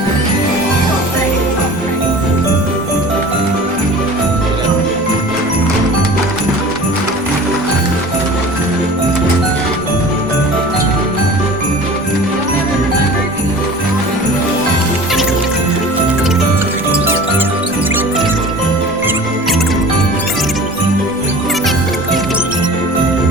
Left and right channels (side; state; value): both; normal; correlation 0.41